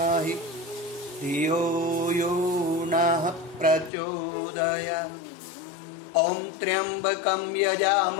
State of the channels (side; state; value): right; drops out; at 3.9 s